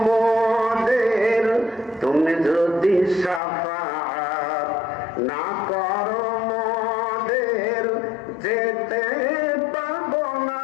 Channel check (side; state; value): right; drops out; at 3.4 s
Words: মোদের, তুমি যদি শাফাআত না করো মোদের, যেতে পারবো না